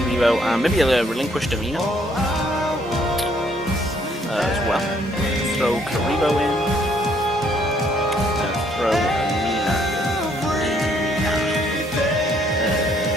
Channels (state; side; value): normal; both; correlation 0.67